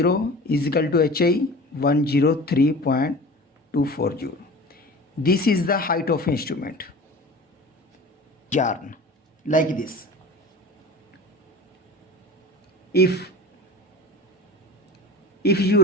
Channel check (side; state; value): both; normal; correlation 0.38